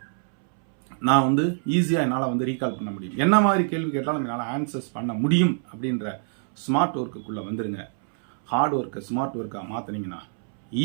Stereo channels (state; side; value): silent; left; 62 dB below the other